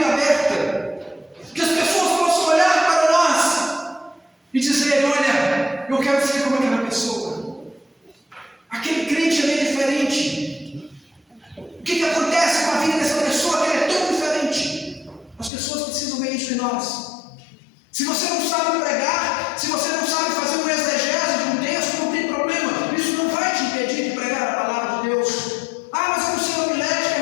aberta. Que as pessoas possam olhar para nós e dizer: olha, eu quero ser como aquela pessoa. Aquele crente ali é diferente. O que acontece com a vida dessa pessoa que ela é tão diferente? As pessoas precisam ver isso em nós. Se você não sabe pregar, se você não sabe fazer uma exegese de um texto, não tem problema. Isso não vai te impedir de pregar a palavra de Deus. Ah, mas eu não sei homilética,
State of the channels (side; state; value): right; drops out; at 15.5 s